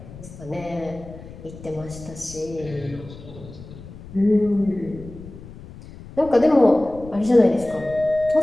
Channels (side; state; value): left; noise; rumble, 16 dB below the sound